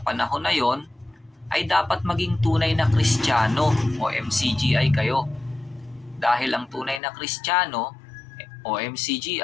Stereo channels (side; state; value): right; drops out; at 7.0 s